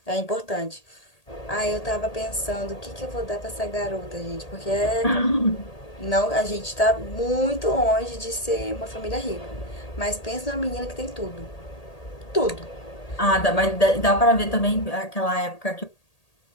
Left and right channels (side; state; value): right; late; 1.8 ms